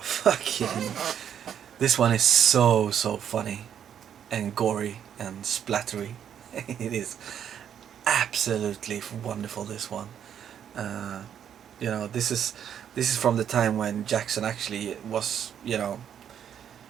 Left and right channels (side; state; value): left; quieter; 9.0 dB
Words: fucking. This one is so funny, and gory and splattery. It is absolutely wonderful. This one, you know, this is from the time when Jackson actually was, you know,